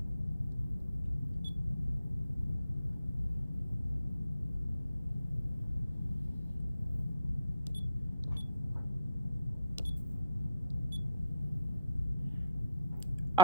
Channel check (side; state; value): both; inverted; correlation -0.67